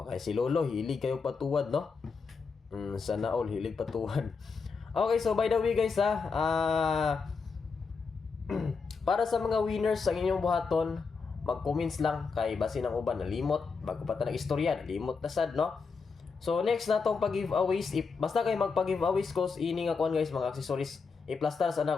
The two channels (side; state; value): right; quieter; 5.0 dB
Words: Kay si Lolo hilig kayo patuwad no. Sana all hilig patuwad. Okay, so by the way guys para sa mga winners sa inyong buhaton, mag-comments lang kay basin ang uban nalimot bago pa ta nag-istorya, nalimot na sad no. So next na tong pag-giveaways, basta kay magpa-giveaways ko ini nga kuan guys, mga accessories. I-plaster